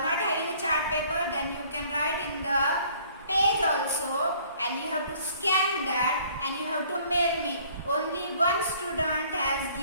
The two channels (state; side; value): inverted; both; correlation -0.57